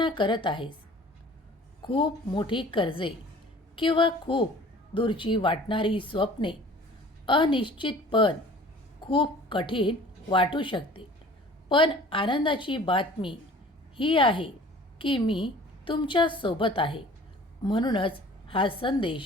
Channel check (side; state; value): both; normal; correlation 0.48